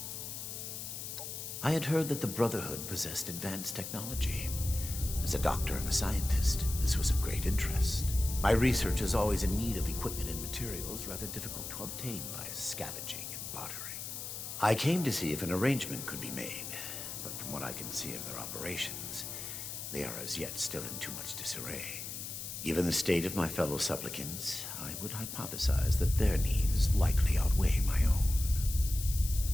I had heard that the Brotherhood possessed advanced technology. As a doctor and a scientist, this was of great interest. My research is always in need of equipment and materials rather difficult to obtain by scavenging and bartering. I came to see if an arrangement could be made, but from what I can see of their operations, they are as yet still in too much disarray. Given the state of my fellow supplicants, I would hypothesize that their needs likely outweigh my own.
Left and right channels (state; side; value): noise; left; hiss, 7 dB below the sound